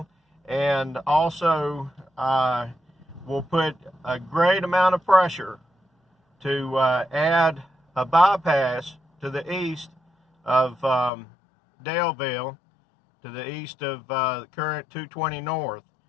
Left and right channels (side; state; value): right; drops out; at 11.1 s